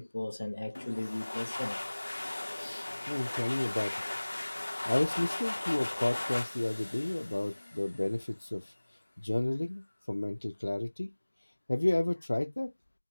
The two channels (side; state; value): both; inverted; correlation -1.00